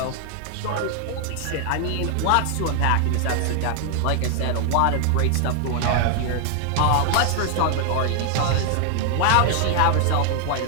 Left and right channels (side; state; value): both; different; correlation 0.00